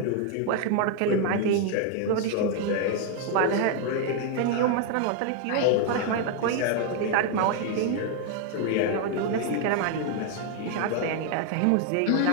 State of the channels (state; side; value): different; both; correlation 0.00